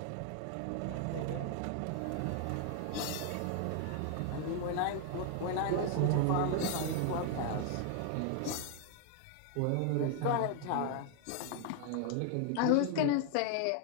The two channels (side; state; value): both; different; correlation 0.00